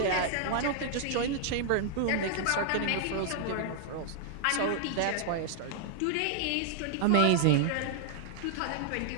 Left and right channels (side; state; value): both; different; correlation -0.01